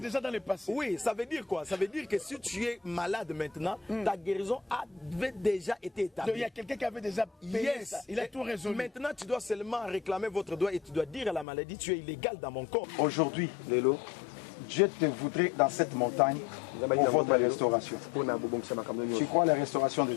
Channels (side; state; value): right; drops out; at 11.5 s